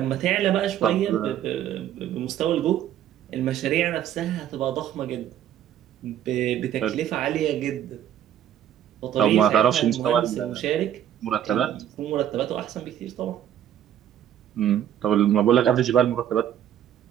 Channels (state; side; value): quieter; left; 10.6 dB